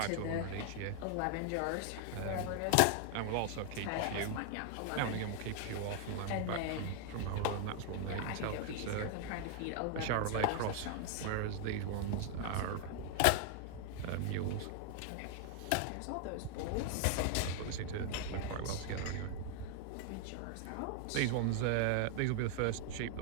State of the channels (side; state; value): both; different; correlation 0.00